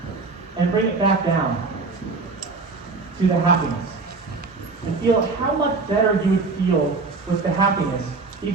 And bring it back down to the happiness. And feel how much better you would feel with the happiness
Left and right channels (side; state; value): left; quieter; 4.0 dB